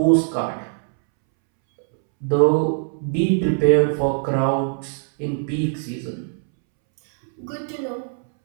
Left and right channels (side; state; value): left; silent; 65 dB below the other